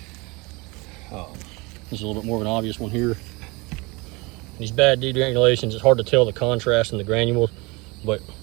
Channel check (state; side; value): quieter; left; 25.8 dB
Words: This is a little bit more of an obvious one here. These bad degranulations, it's hard to tell the contrast in the granules, but